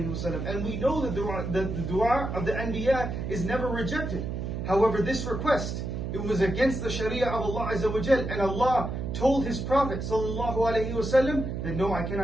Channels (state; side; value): noise; right; hum, 4 dB below the sound